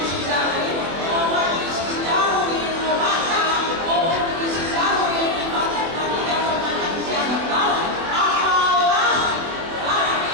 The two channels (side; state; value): left; late; 24 ms